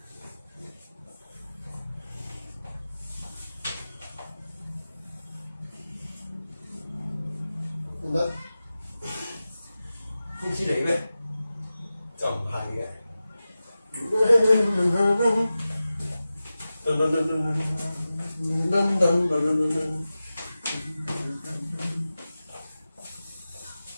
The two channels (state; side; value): inverted; both; correlation -0.95